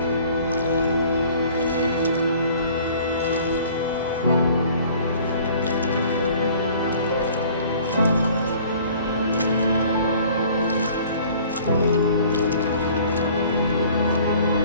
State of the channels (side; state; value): both; inverted; correlation -0.52